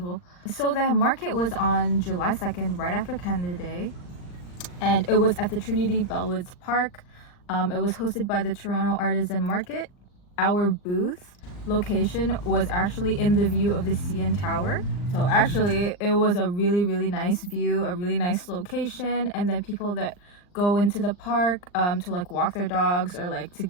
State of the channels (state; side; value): late; right; 39 ms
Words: So the market was on July 2nd, right after Canada Day, and it was at the Trinity Bellwoods Park. It was hosted by the Toronto Artisan Market. Our booth location was actually in the view of the CN Tower. So actually it was a really nice view, a really nice location, and then people that go into the park to like walk their dogs or like to